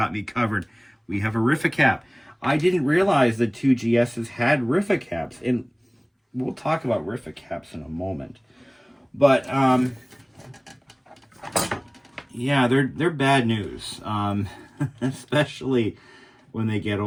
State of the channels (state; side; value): identical; both; correlation 1.00